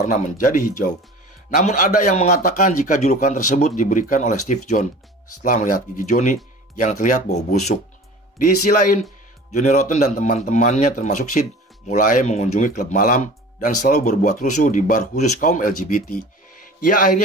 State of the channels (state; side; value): normal; both; correlation 0.41